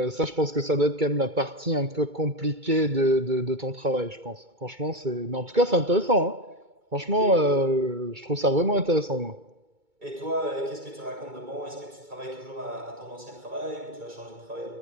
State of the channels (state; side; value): late; left; 2.2 ms